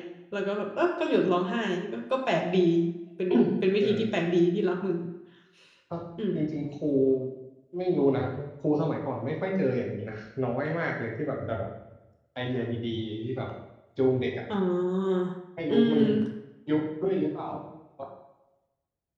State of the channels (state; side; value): identical; both; correlation 1.00